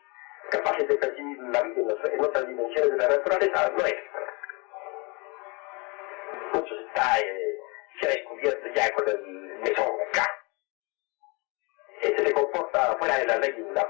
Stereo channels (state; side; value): quieter; right; 29.7 dB